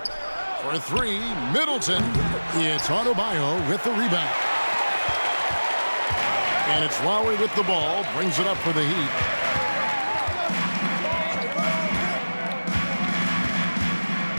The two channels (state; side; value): inverted; both; correlation -1.00